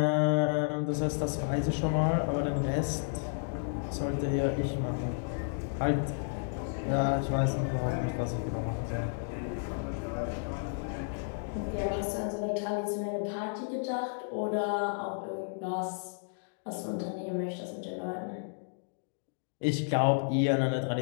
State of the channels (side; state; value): right; silent; digital silence